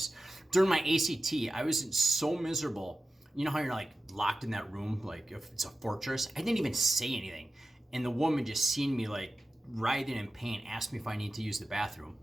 During my ACT, I was so miserable. You know how you're like locked in that room, like if it's a fortress? I didn't even say anything, and the woman just seen me like writhing in pain, asked me if I need to use the bathroom.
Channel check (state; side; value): normal; both; correlation 0.92